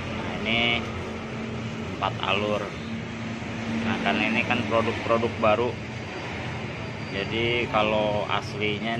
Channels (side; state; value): both; identical; correlation 1.00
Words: Nah, ini 4 alur. Nah, karena ini kan produk-produk baru, jadi kalau aslinya